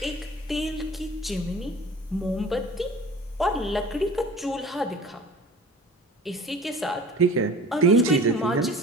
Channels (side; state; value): both; normal; correlation 0.43